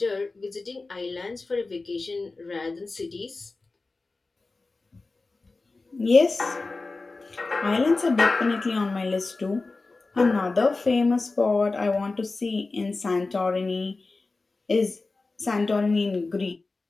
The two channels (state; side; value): quieter; right; 3.6 dB